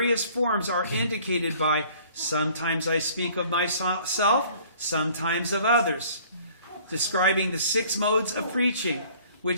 forms are indicated by sometimes I speak of myself, sometimes of others, describing the 6 modes of preaching,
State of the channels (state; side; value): inverted; both; correlation -0.54